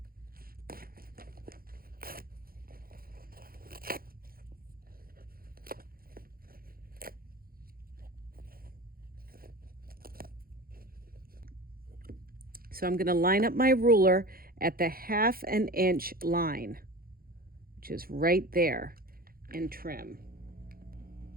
So I'm going to line up my ruler at the 1/2 inch line, which is right there, and trim.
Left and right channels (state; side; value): late; left; 0.43 ms